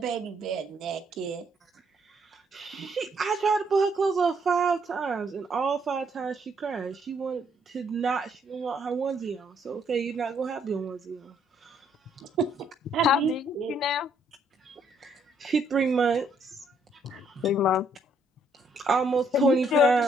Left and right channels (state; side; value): normal; both; correlation 0.69